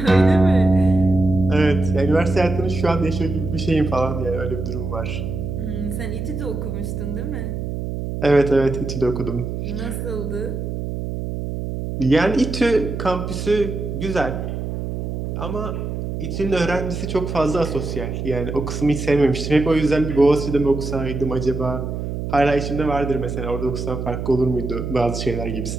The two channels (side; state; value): right; noise; hum, 4 dB below the sound